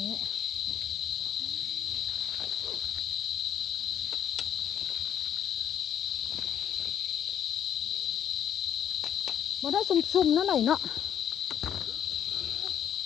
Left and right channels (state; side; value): quieter; right; 9.3 dB